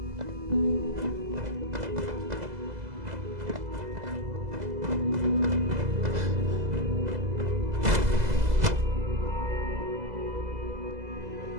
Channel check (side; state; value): left; late; 2.0 ms